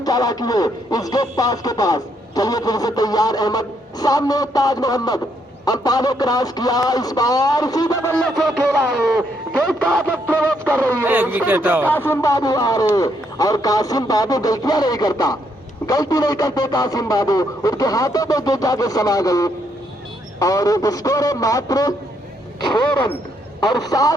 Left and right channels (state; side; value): normal; both; correlation 0.74